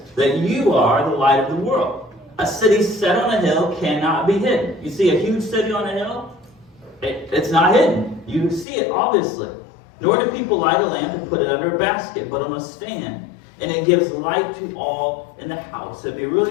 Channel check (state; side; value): drops out; right; at 8.7 s